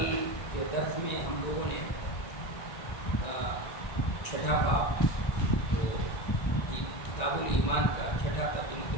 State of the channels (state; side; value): late; right; 1.9 ms